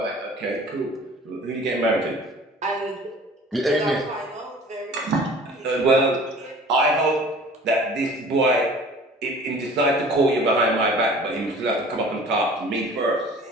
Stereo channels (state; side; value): normal; both; correlation 0.46